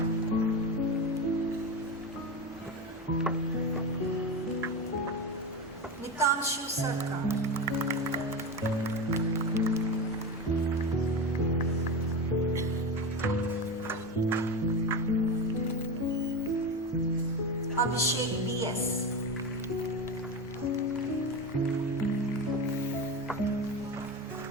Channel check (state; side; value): normal; both; correlation 0.20